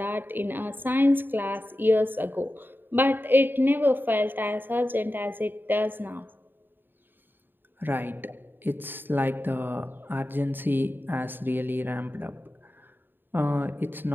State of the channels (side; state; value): left; late; 0.095 ms